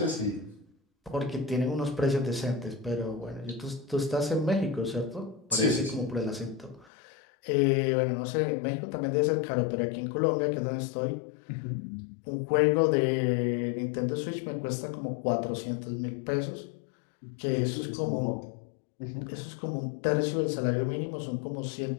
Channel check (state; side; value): drops out; right; at 6.9 s